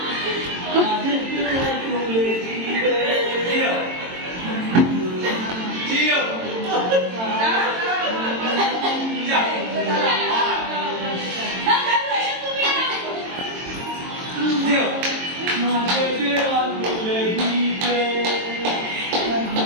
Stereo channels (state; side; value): late; left; 22 ms